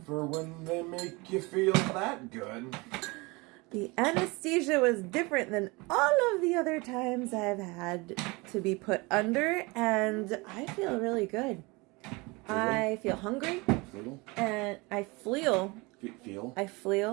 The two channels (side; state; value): left; quieter; 25.4 dB